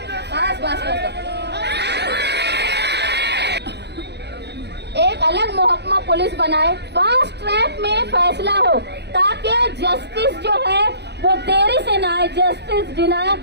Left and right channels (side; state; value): left; late; 0.49 ms